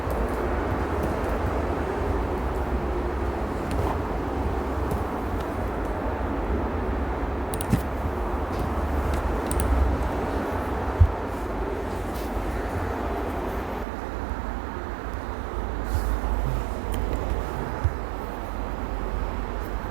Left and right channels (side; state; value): left; drops out; at 13.9 s